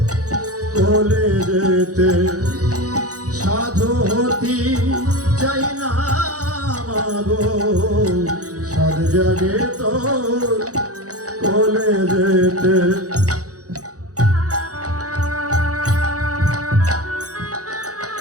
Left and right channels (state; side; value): late; left; 0.67 ms